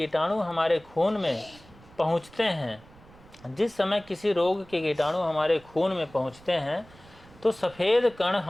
हमारे खून में पहुंचते हैं जिस समय किसी रोग के कीटाणु हमारे खून में पहुंचते हैं तो सफ़ेद कण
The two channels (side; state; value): right; noise; rumble, 24 dB below the sound